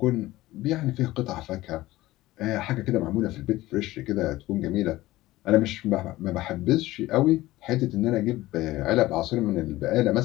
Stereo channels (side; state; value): right; quieter; 17.3 dB